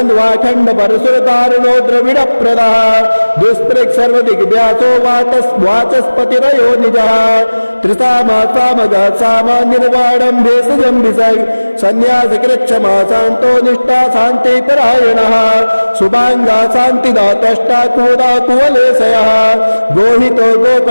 परशुरतारुणो द्रविडप्रदः दुष्पृक् सर्वदिग्व्यासो वाचस्पतिरयो निजः त्रिसामा सामगः सामा निर्वाणं भेषजं विसर्ग सन्न्यासकृच्छमा शान्तो निष्ठा शान्तिपरायणः शुभाङ्गा शान्तिदातष्टा कुवदा कुवलेशयः गोहितो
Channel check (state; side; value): inverted; both; correlation -1.00